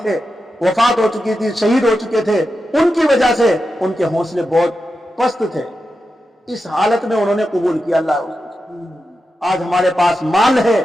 تھے، وفات ہو چکی تھی، شہید ہو چکے تھے، ان کی وجہ سے ان کے حوصلے بہت پست تھے، اس حالت میں انہوں نے قبول کیا اللہ۔ آج ہمارے پاس مال ہے،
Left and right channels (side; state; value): both; normal; correlation 0.89